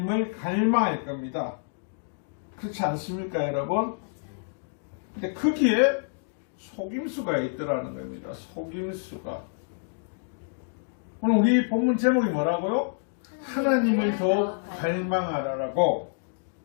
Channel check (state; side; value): silent; right; digital silence